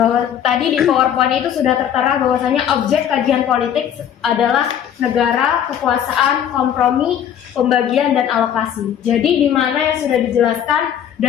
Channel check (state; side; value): quieter; right; 9.6 dB